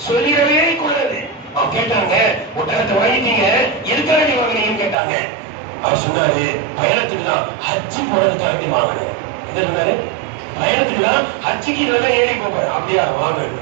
சொல்லிடவே கூடாது. அவங்க கேட்டாங்க, ஒட்டகத்தை வாங்கிட்டீங்க, எதுக்காக வாங்கினீங்கன்னு கேட்டாங்க. அவர் சொன்னாரு, பயணத்துக்கு தான், ஹஜ்ஜு போறதுக்காக வாங்கினேன். என்ன சொன்னாரு? பயணத்துக்கு தான், ஹஜ்ஜுக்கு இதுல ஏறி போறேன். அப்படியா,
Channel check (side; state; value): left; drops out; at 5.0 s